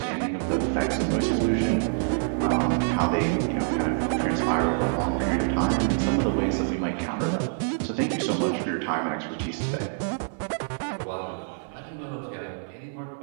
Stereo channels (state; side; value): silent; left; 57 dB below the other